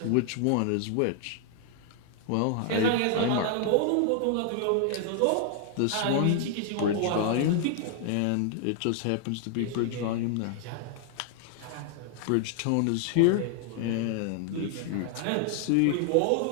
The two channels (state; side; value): different; both; correlation 0.00